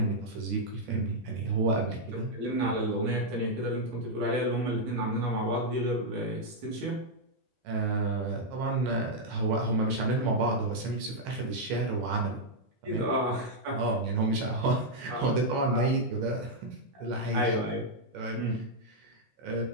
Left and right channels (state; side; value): normal; both; correlation -0.03